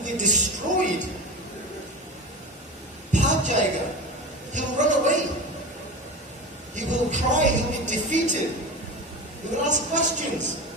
be destroyed. Bhag jayega. He will run away. He will cry. He will be defeated. He will ask questions.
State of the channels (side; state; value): both; normal; correlation 0.28